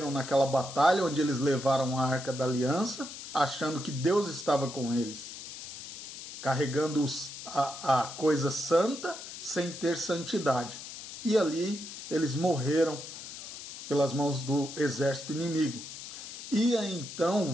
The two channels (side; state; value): left; noise; hiss, 11 dB below the sound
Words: naquela batalha onde eles levaram a Arca da Aliança, achando que Deus estava com eles, carregando a coisa santa sem ter santidade. E ali eles morreram pelas mãos do exército inimigo. E aí, então